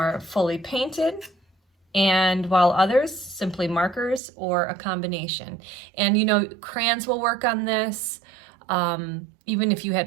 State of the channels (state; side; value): drops out; left; at 4.2 s